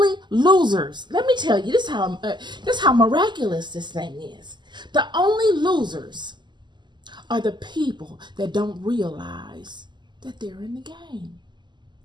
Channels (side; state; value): left; late; 0.21 ms